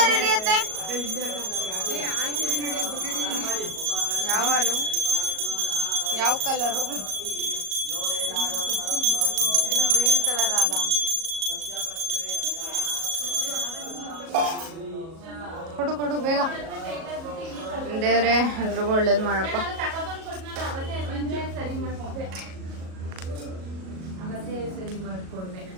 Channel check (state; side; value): late; left; 37 ms